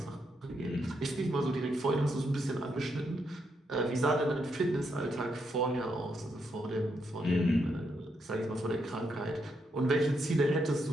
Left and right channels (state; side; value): normal; both; correlation 0.79